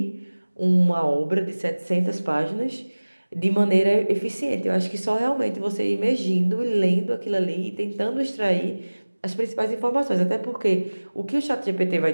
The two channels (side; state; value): both; inverted; correlation -1.00